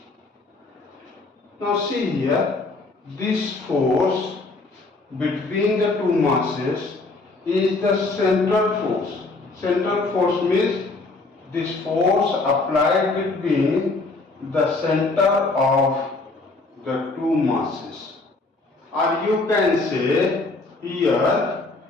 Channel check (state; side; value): quieter; right; 3.4 dB